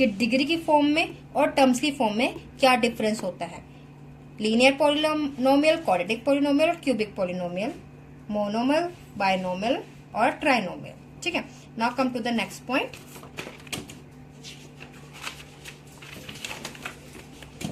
डिग्री की फॉर्म में और टर्म्स की फॉर्म में क्या डिफरेंस होता है। लीनियर पॉलिनोमियल, क्वाड्रेटिक पॉलिनोमियल और क्यूबिक पॉलिनोमियल, मोनोमियल, बाइनोमियल और ट्राइनोमियल। ठीक है, now come to the next point.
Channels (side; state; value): both; identical; correlation 1.00